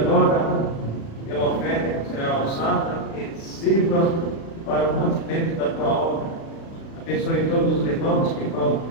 pela oferta que será usada e sirva para o mantimento da tua obra. Abençoe todos os irmãos que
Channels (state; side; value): late; right; 36 ms